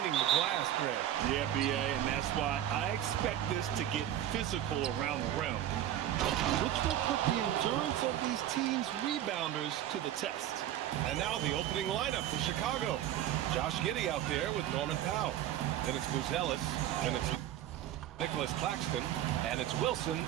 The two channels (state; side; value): quieter; left; 11.8 dB